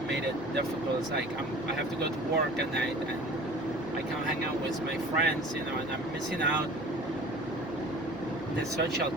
made it difficult. It's like I have to go to work at night and I can't hang out with my friends, you know, and I'm missing out the social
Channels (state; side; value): noise; right; hum, 22 dB below the sound